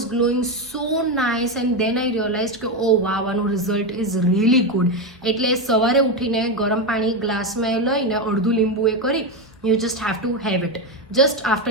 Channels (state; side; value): normal; both; correlation 0.11